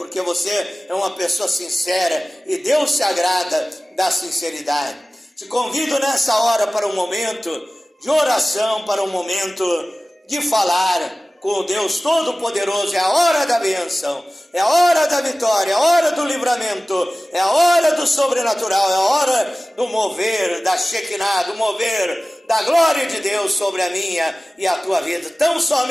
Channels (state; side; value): normal; both; correlation 0.97